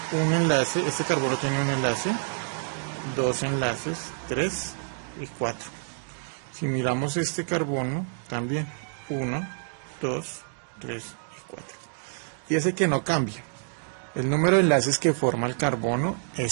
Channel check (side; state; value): left; silent; digital silence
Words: un enlace, este carbono tiene un enlace, 2 enlaces, 3 y 4. Si miramos este carbono, también 1, 2, 3 y 4. Fíjese que no cambia. El número de enlaces que forma el carbono